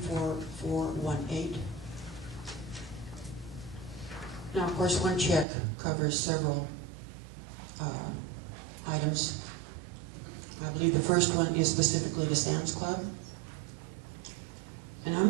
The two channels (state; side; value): drops out; left; at 5.5 s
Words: Now, of course, one check covers several items. I believe the first one is specifically to Sam's Club. And